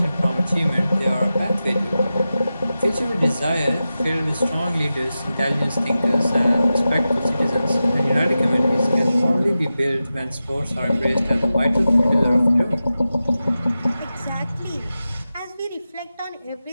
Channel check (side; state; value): both; inverted; correlation -0.93